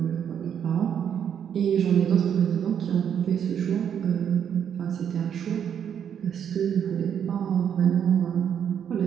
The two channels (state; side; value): quieter; left; 8.5 dB